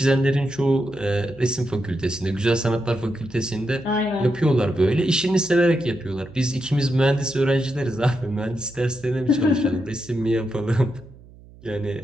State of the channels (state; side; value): noise; right; hum, 22 dB below the sound